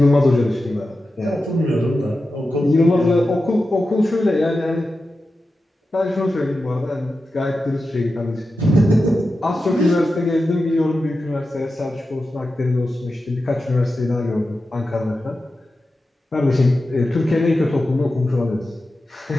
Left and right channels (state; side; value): normal; both; correlation 0.92